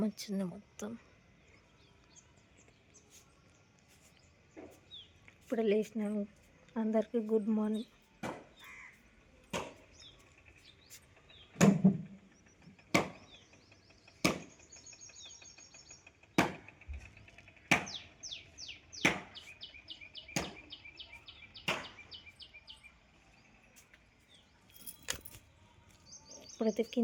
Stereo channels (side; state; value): both; identical; correlation 1.00